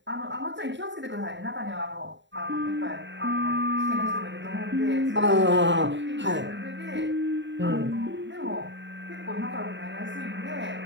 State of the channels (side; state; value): left; late; 0.53 ms